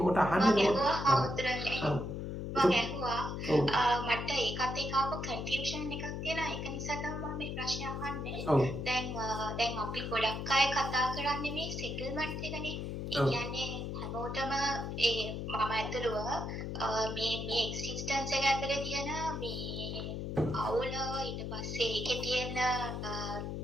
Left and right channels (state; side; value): noise; left; hum, 4 dB below the sound